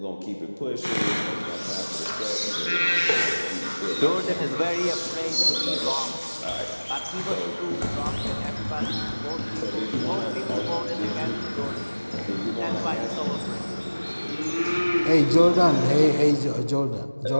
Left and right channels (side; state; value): both; inverted; correlation -1.00